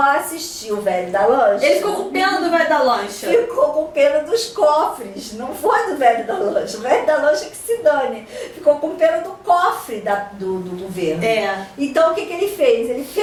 assistir o velho da lancha. Ele ficou com pena do velho da lancha. Ficou com pena dos cofres, não foi do velho da lancha. O velho da lancha que se dane. Ficou com pena do cofre do governo. Então, o que ele fez? Ele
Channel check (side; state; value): both; identical; correlation 1.00